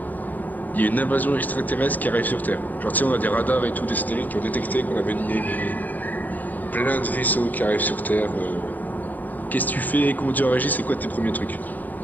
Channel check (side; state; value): right; late; 0.085 ms